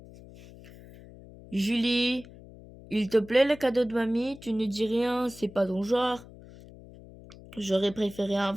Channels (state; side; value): noise; left; hum, 19 dB below the sound